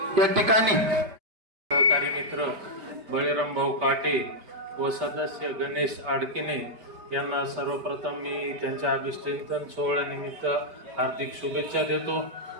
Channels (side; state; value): left; late; 5.1 ms